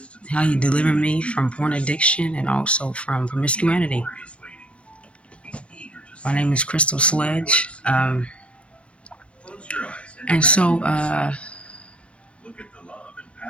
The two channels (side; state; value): right; late; 0.061 ms